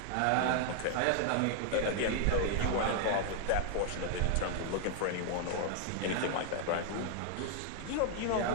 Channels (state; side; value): different; both; correlation 0.00